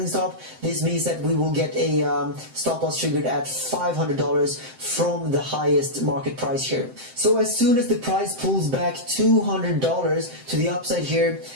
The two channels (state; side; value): late; left; 7.7 ms